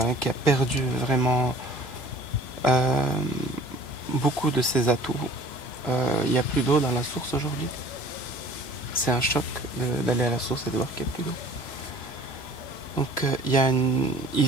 perdu vraiment beaucoup de ses atouts. Il n'y a plus d'eau dans la source aujourd'hui. C'est un choc d'aller à la source et de voir qu'il n'y a plus d'eau. Donc ils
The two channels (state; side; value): late; right; 2.9 ms